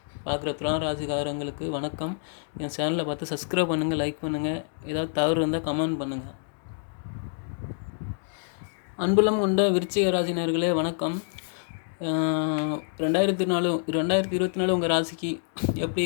பார்க்குற துலாம் ராசிக்காரங்களுக்கு வணக்கம். என் சேனலை பார்த்து சப்ஸ்கிரைப் பண்ணுங்கள், லைக் பண்ணுங்கள். ஏதாவது தவறு இருந்தால் கமெண்ட் பண்ணுங்கள். அன்புலம் கொண்ட விருச்சிக ராசினர்களே வணக்கம். 2024 உங்கள் ராசிக்கு எப்படி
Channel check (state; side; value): silent; right; digital silence